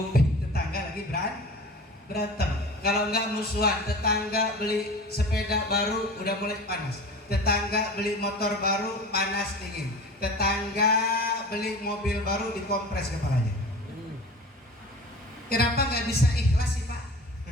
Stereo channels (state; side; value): normal; both; correlation 0.37